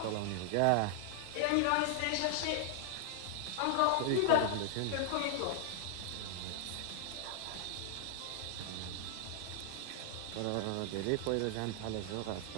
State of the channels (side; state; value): both; different; correlation 0.00